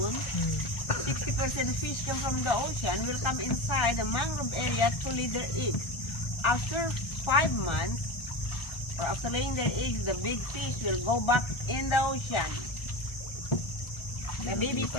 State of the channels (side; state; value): right; late; 1.3 ms